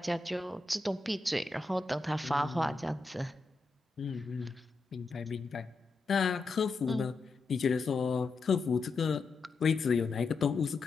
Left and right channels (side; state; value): right; quieter; 3.9 dB